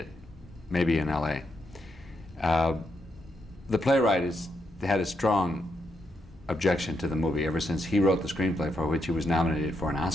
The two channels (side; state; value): both; normal; correlation 0.81